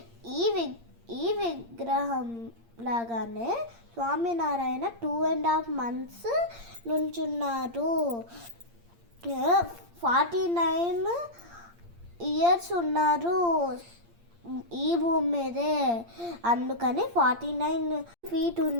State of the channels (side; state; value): left; late; 8.7 ms